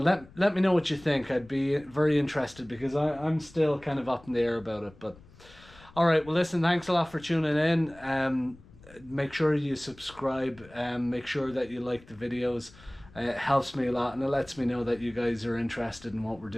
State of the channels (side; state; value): left; noise; rumble, 23 dB below the sound